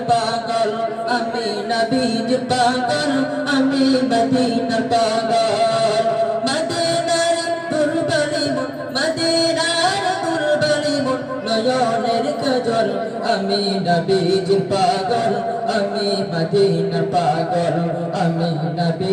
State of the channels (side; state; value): both; identical; correlation 1.00